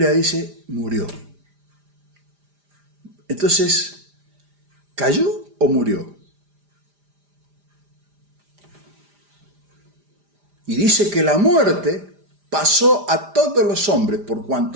dice murió. Entonces, ¿cayó o murió? Y dice que la muerte pasó a todos los hombres por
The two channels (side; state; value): left; late; 5.0 ms